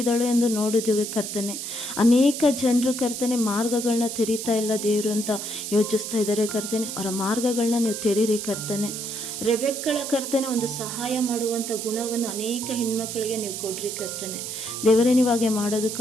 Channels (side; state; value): right; noise; hiss, 6 dB below the sound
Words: ಎಂದು ನೋಡಿದ್ದೇವೆ ಕರ್ತನೆ. ಅನೇಕ ಜನರು ಕರ್ತನೆ ಮಾರ್ಗಗಳನ್ನ ತೆರೀತಾ ಇಲ್ಲ ದೇವರು ಅಂತ ಯೋಚಿಸ್ತಾ ಇದ್ದಾರೆ ಕರ್ತನೆ. ಅವರ ಮಾರ್ಗಗಳನ್ನ ನೀವು ತೆರೀರಿ ಕರ್ತನೆ. ರೆಬೆಕ್ಕಳ ಕರ್ತನೆ ಒಂದು ಸಹಾಯ ಮಾಡುವಂಥ ಗುಣವನ್ನು ಅನೇಕ ಹೆಣ್ಮಕ್ಳಿಗೆ ನೀವು ಕೊಡ್ರಿ ಕರ್ತನೆ. ದೇವರೇ, ನೀವು ಹಾಗೆ